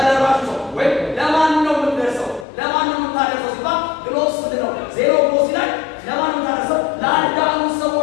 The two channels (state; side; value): drops out; right; at 2.5 s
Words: ሰው ወይም ለማን ነው የምትደርሰው? ለማን ነው የምታደርሰው ሲባል ግሎስ ምንድን ነው? ዜኖግሎሲ ላይ ለማን ነው የምታደርሰው? ለአንዳንዱ